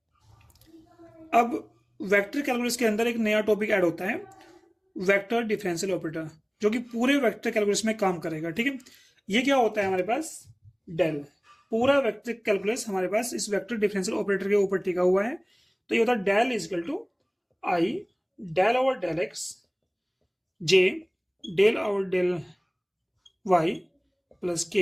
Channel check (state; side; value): identical; both; correlation 1.00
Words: अब वेक्टर कैलकुलस के अंदर एक नया टॉपिक ऐड होता है, वेक्टर डिफरेंशियल ऑपरेटर, जो कि पूरे वेक्टर कैलकुलस में काम करेगा। ठीक है, ये क्या होता है हमारे पास, डेल। पूरा वेक्टर कैलकुलस हमारे पास इस वेक्टर डिफरेंशियल ऑपरेटर के ऊपर टिका हुआ है। तो ये होता है del is equal to I del over del X J del over del Y plus